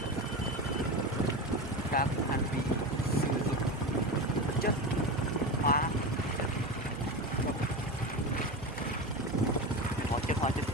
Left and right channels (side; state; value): right; noise; hum, 13 dB below the sound